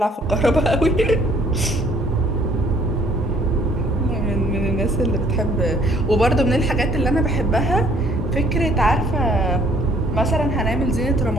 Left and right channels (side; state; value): both; normal; correlation 0.60